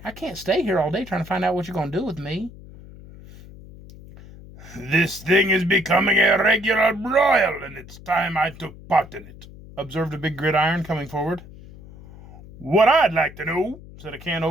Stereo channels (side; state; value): left; noise; hum, 18 dB below the sound